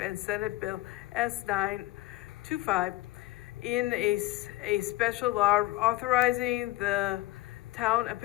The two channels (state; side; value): quieter; right; 18.5 dB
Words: Senate Bill S 925 in a special law authorizing the town of